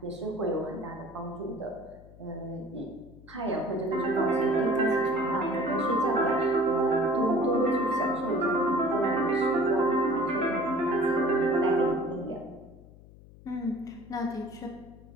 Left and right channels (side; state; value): left; noise; hum, 21 dB below the sound